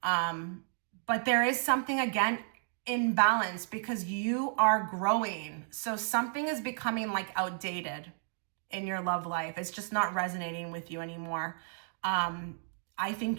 But there is something, again, imbalance because you are growing. So something is becoming like outdated in your love life. It's just not resonating with you anymore. I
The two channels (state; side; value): silent; left; digital silence